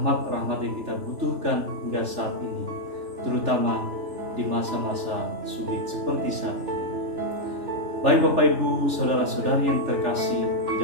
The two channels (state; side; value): late; left; 3.4 ms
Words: yang kita butuhkan hingga saat ini, terutama di masa-masa sulit seperti saat ini. Baik Bapak Ibu, saudara-saudari yang terkasih di